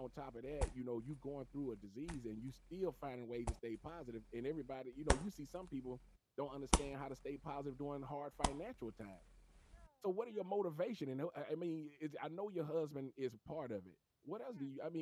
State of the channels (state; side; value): identical; both; correlation 1.00